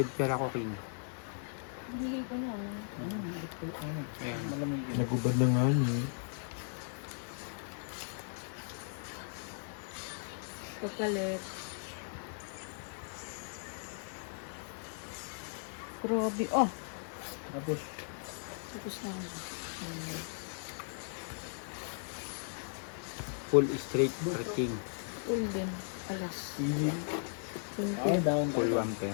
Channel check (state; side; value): silent; right; digital silence